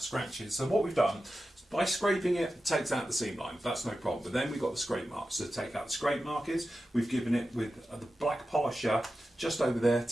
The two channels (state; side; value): normal; both; correlation 0.92